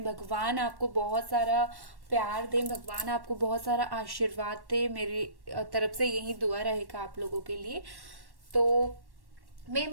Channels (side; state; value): left; late; 1.1 ms